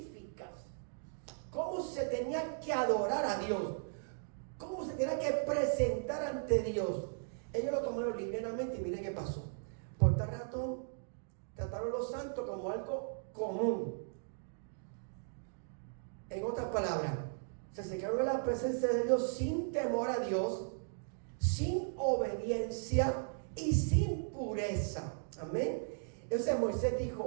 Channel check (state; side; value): silent; left; digital silence